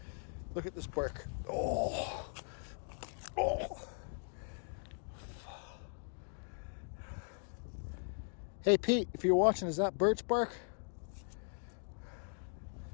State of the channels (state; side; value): silent; right; 52 dB below the other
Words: Look at this bark. Oh. Oh. Hey Pete, if you're watching, is that birch bark?